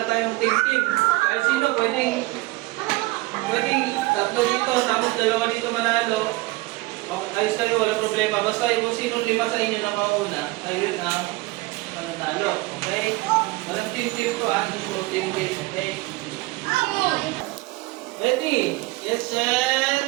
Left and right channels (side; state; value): left; quieter; 21.4 dB